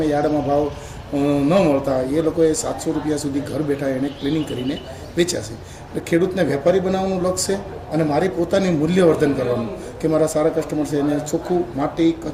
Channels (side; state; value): both; identical; correlation 1.00